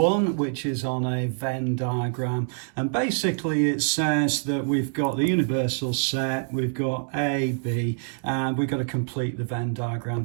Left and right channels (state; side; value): silent; left; 60 dB below the other